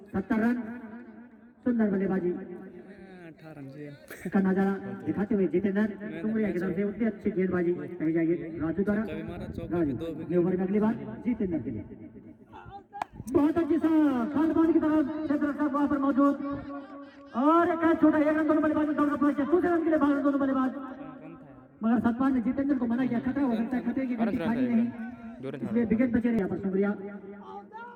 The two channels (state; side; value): identical; both; correlation 1.00